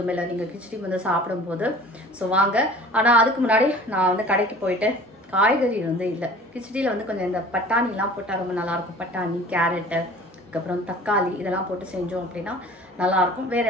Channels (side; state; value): both; normal; correlation 0.45